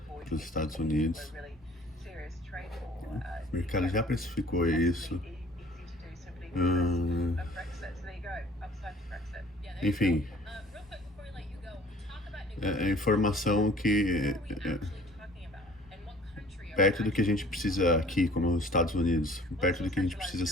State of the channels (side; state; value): both; normal; correlation 0.50